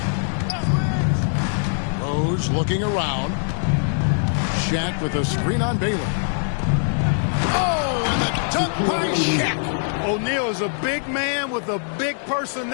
Rose looking around. Shaq with a screen on Baylor. Oh, and the dunk by Shaq. O'Neal is a big man with a big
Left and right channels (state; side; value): silent; right; digital silence